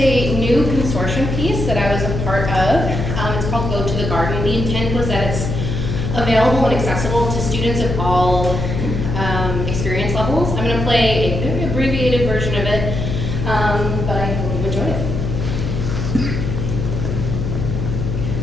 new consortium piece that I was a part of. It's called Go to the Garden. The intent was that it's available and accessible to students of all experience levels. I'm going to play a very abbreviated version of it, but I hope you enjoy it.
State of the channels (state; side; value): noise; left; hum, 2 dB below the sound